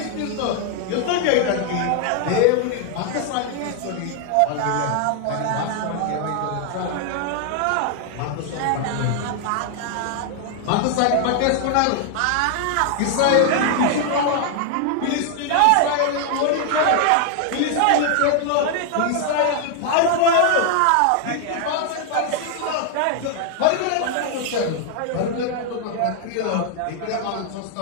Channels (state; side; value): different; both; correlation 0.00